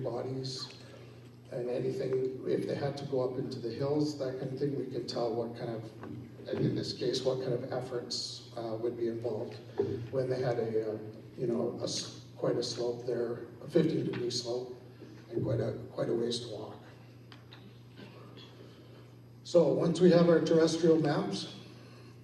bodies and anything, if they had to go up into the hills, that kind of thing, we could tell what kind of, in this case, what kind of efforts would be involved when they had quite a slope there, a 15-degree slope, and quite a ways to walk. So once we have our terrestrial maps,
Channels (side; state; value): both; identical; correlation 1.00